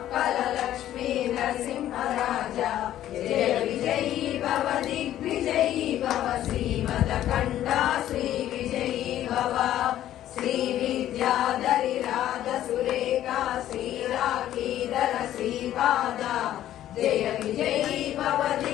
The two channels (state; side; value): quieter; right; 12.4 dB